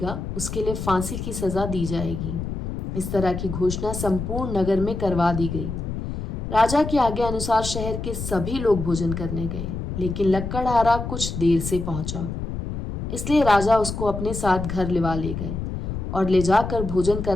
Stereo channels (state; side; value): noise; left; rumble, 5 dB below the sound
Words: उसके लिए फांसी की सजा दी जाएगी। इस तरह की घोषणा संपूर्ण नगर में करवा दी गई। राजा की आज्ञा अनुसार शहर के सभी लोग भोजन करने गए, लेकिन लक्कड़हारा कुछ देर से पहुंचा, इसलिए राजा उसको अपने साथ घर लिवा ले गए और ले जाकर भोजन